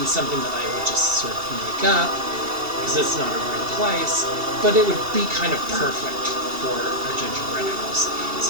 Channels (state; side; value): late; left; 2.7 ms